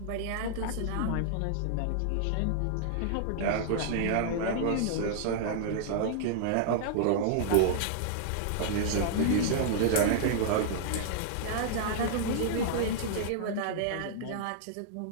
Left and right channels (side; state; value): both; different; correlation -0.01